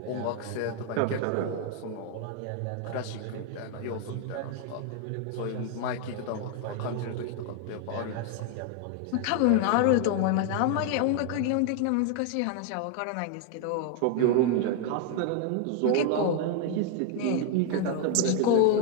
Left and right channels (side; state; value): both; different; correlation 0.01